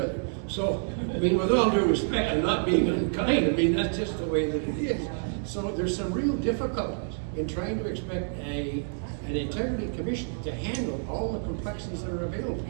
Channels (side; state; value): left; silent; digital silence